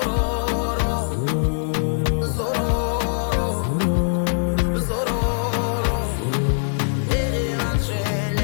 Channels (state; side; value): silent; right; digital silence